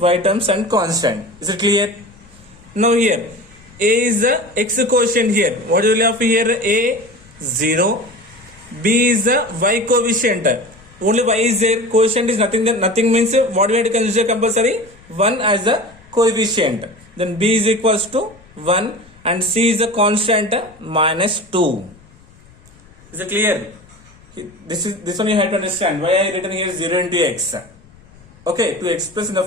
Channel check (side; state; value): left; noise; rumble, 26 dB below the sound